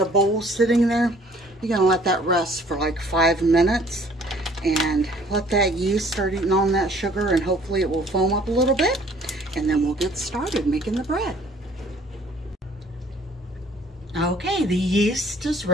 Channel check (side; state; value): both; normal; correlation 0.57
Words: bowl sitting there. You're gonna let that rest for like 5 minutes and let that yeast start eating on that sugar, and hopefully it will foam up a little bit, and then we'll get started making the bread. Okay, the yeast is